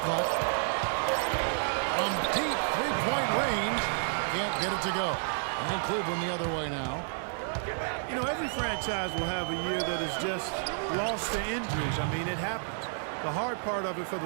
clock. From deep three-point range, can't get it to go. And Cleveland the other way now. You know, every franchise will have a year that is just lost to injuries. I mean, it happens. The hard part of it for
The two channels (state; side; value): silent; left; digital silence